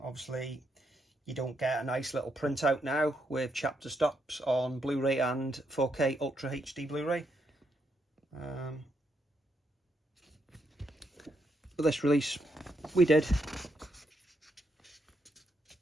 you don't get a nice little printout now with chapter stops on Blu-ray and 4K Ultra HD Blu-ray. But this release we did.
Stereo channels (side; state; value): both; normal; correlation 0.79